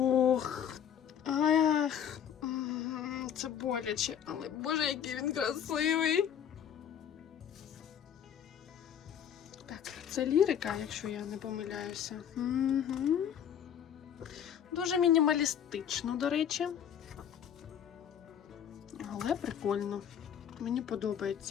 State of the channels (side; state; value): right; quieter; 9.0 dB